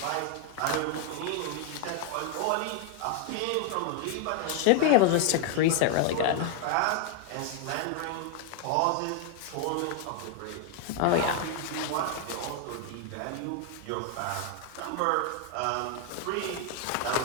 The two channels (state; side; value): different; both; correlation 0.00